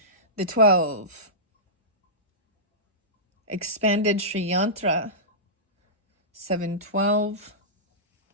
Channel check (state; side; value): normal; both; correlation -0.17